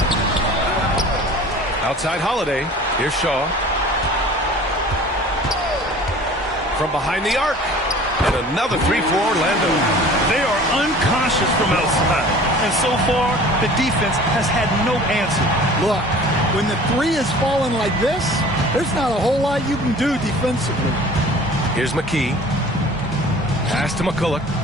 Outside Holiday. Here's Shaw. From behind the arc. And another three for Orlando. They are unconscious from outside. And so far, the defense has had no answer. Look, when the three is falling like this, there's not a whole lot you can do defensively. Here's McKee. Pass to McCulloch.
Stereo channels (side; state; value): both; normal; correlation 0.45